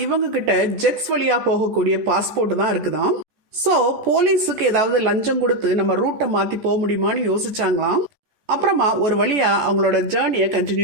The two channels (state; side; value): late; left; 14 ms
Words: இவங்க கிட்ட ஜெக்ஸ் வழியா போகக்கூடிய பாஸ்போர்ட் தான் இருக்குதாம். ஸோ போலீஸுக்கு ஏதாவது லஞ்சம் கொடுத்து நம்ம ரூட்டை மாற்றி போக முடியுமான்னு யோசிச்சாங்களாம். அப்புறமா ஒரு வழியா அவங்களோட ஜேர்னியை